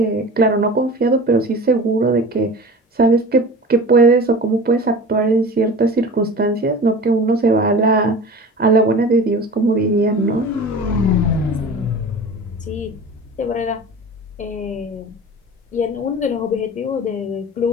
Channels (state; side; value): normal; both; correlation 0.36